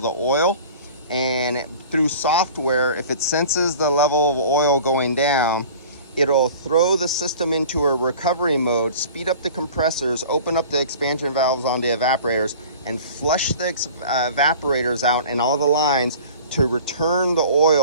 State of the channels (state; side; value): inverted; both; correlation -0.43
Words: the oil. And through software, if it senses the level of oil going down, it'll throw the system into a recovery mode, speed up the compressors, open up the expansion valves on the evaporators, and flush the evaporators out and all the lines to return the